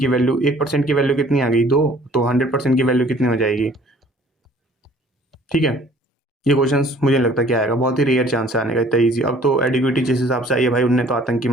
वैल्यू, 1% की वैल्यू कितनी आ गई? 2। तो 100% की वैल्यू कितनी हो जाएगी? ठीक है, ये क्वेश्चंस मुझे नहीं लगता क्या आएगा, बहुत ही रेयर चांस है आने का इतना ईजी। अब तो एडिक्विटी जिस हिसाब से आई है भाई, उनने तो आतंकी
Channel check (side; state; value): both; normal; correlation 0.54